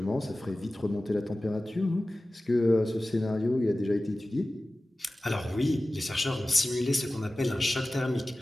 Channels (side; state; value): both; normal; correlation 0.96